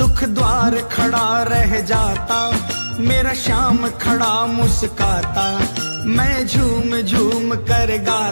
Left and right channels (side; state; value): both; inverted; correlation -1.00